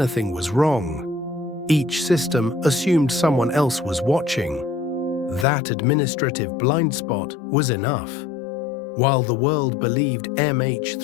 was wrong. Each system assumed someone else was watching. That administrative blind spot was enough. While the world believed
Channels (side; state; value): right; drops out; at 5.5 s